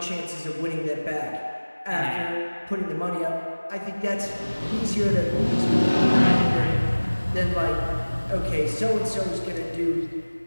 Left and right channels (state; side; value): inverted; both; correlation -1.00